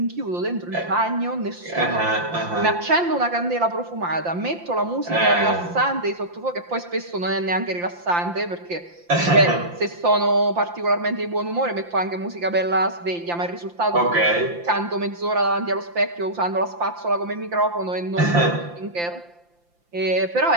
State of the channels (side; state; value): left; late; 5.8 ms